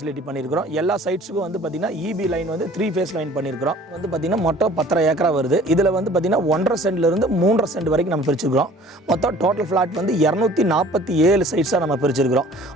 பண்ணியிருக்கிறோம். எல்லா சைட்ஸுக்கும் வந்து பார்த்திங்கன்னா இபி லைன் வந்து 3 ஃபேஸ் லைன் பண்ணியிருக்கிறோம். வந்து பார்த்திங்கன்னா மொத்தம் 10 ஏக்கரா வருது. இதில் வந்து பார்த்திங்கன்னா 1.5 சென்ட்லேருந்து 3.5 சென்ட் வரைக்கும் நம்ம பிரிச்சுக்கிறோம். மொத்தம் டோட்டல் ஃப்ளாட் வந்து 247 சைட்ஸாக நம்ம பிரிச்சிருக்கிறோம்.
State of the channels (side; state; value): both; normal; correlation 0.50